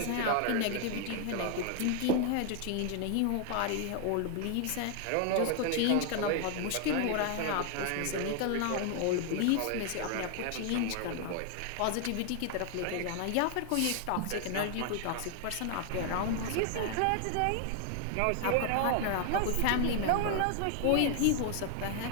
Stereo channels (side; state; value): both; different; correlation 0.00